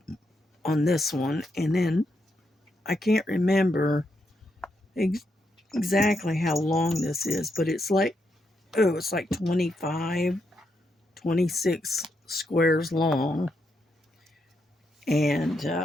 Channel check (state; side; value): normal; both; correlation 0.81